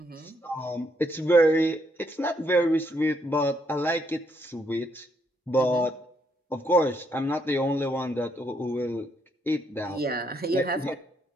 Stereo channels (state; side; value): normal; both; correlation 0.74